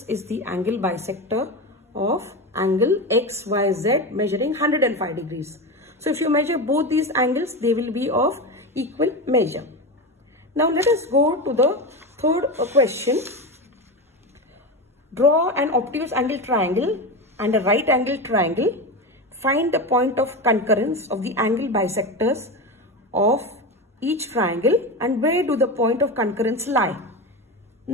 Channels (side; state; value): both; normal; correlation 0.20